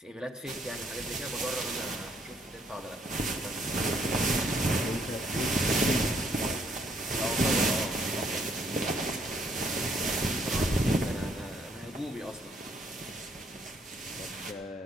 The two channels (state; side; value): normal; both; correlation 0.69